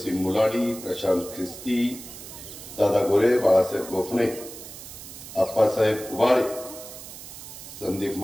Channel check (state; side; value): noise; right; hiss, 13 dB below the sound